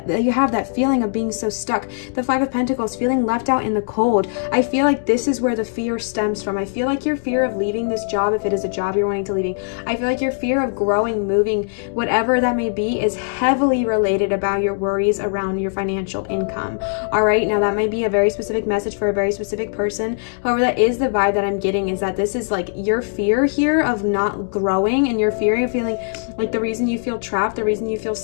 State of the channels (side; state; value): right; silent; 66 dB below the other